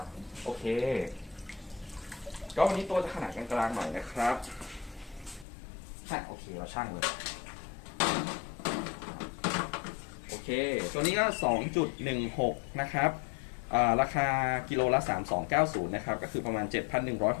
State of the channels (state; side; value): drops out; right; at 5.5 s